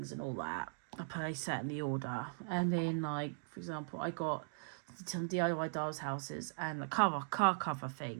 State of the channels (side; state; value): left; silent; digital silence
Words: and all that. I place that in the order, and then, like, for example, I got some DIY Dolls Houses and a car cover